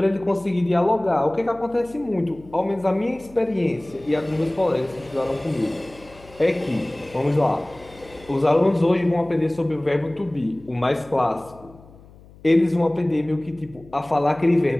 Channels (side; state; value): left; noise; hum, 23 dB below the sound